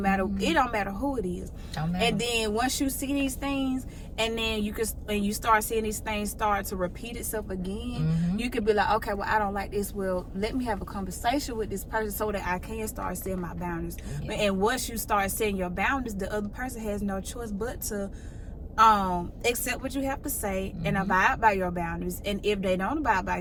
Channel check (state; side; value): identical; both; correlation 1.00